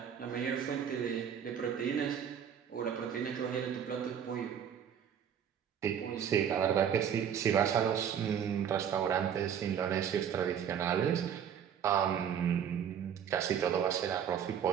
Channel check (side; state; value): left; quieter; 8.5 dB